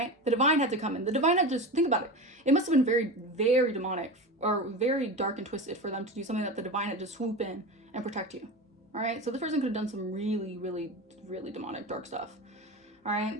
The divine had to come in. The divine had just, think about it. It must have been very, very demonic or very dark and twisted for them to do something that the divine had to swoop in and protect you. All right, so this person could have done some really, really, really demonic, dark stuff. All right,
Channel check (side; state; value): both; normal; correlation 0.26